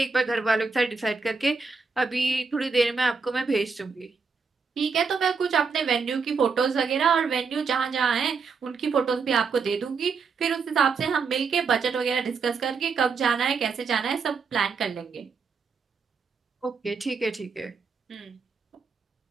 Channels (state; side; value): quieter; left; 5.1 dB